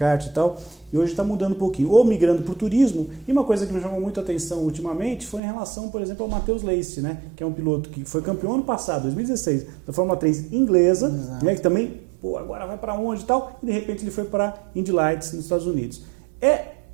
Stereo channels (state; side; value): drops out; left; at 5.4 s